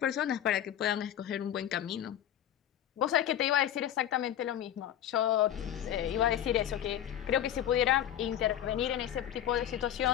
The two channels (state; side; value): quieter; right; 10.9 dB